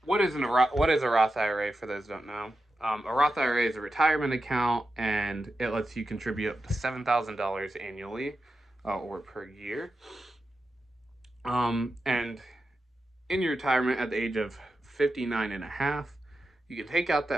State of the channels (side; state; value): both; normal; correlation 0.90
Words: what is a Roth IRA for those who don't know? A Roth IRA is a retirement account, and it lets you contribute up to $7,000 annually or per year. And in your retirement at the age of 59 and a half, you can take out